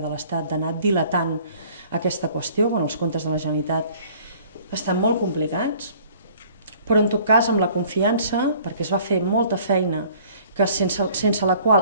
de l'Estat d'anar dilatant aquesta qüestió, quan els comptes de la Generalitat estan molt complicats, però en tot cas amb la confiança, perquè es va fer molta feina que sense la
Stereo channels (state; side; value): inverted; both; correlation -0.54